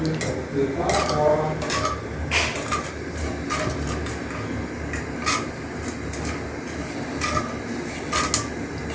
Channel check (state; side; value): identical; both; correlation 1.00